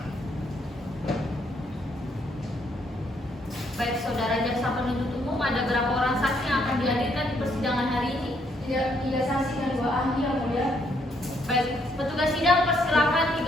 Baik, saudara jaksa penuntut umum, ada berapa orang saksi yang akan dihadirkan di persidangan hari ini? Tiga saksi dan 2 ahli yang mulia. Baik, petugas sidang persilakan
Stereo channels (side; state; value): both; normal; correlation 0.71